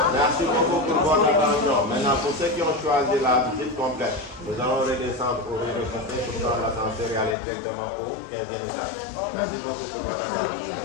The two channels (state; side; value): drops out; right; at 7.4 s